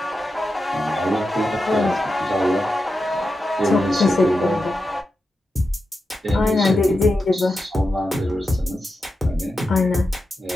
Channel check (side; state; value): both; normal; correlation 0.89